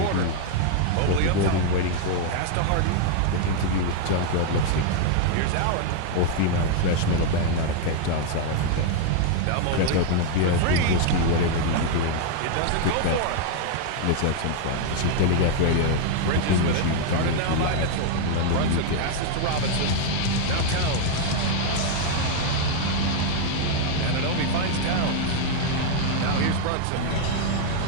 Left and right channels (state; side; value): different; both; correlation 0.00